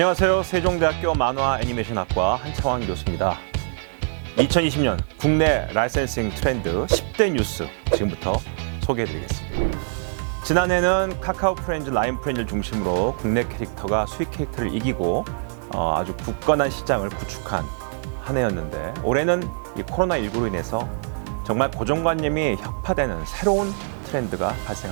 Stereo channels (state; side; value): silent; left; digital silence